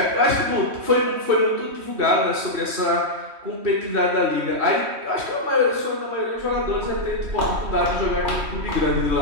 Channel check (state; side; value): late; left; 3.2 ms